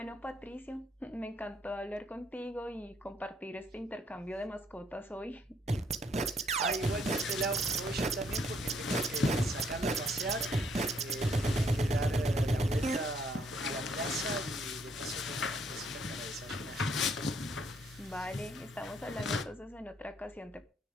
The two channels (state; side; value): normal; both; correlation 0.69